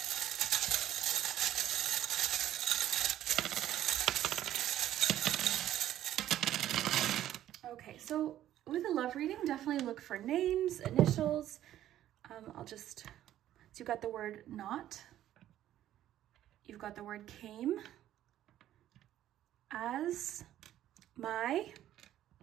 Okay, so with a love reading, definitely look for names, initials. So you've got the word not. You've got the word came. As, my,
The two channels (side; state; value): left; quieter; 12.5 dB